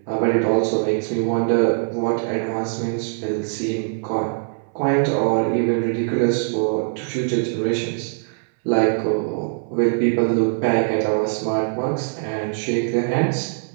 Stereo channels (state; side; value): silent; left; 64 dB below the other